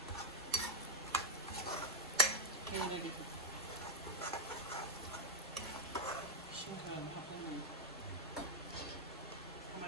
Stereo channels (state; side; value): normal; both; correlation -0.04